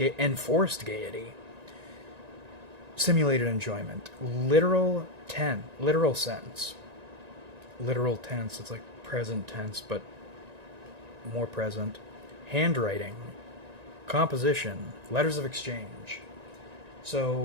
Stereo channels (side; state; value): left; late; 1.9 ms